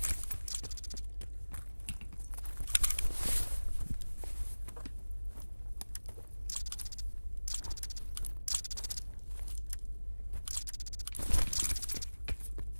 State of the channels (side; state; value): both; inverted; correlation -1.00